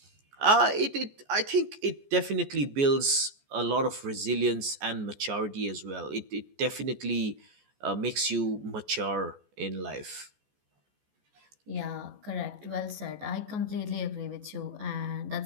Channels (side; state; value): left; late; 14 ms